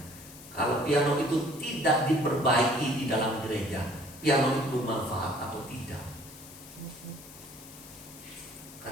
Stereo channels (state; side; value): noise; left; hiss, 17 dB below the sound